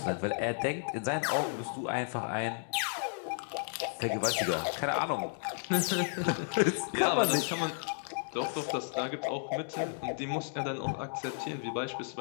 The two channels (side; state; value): right; silent; digital silence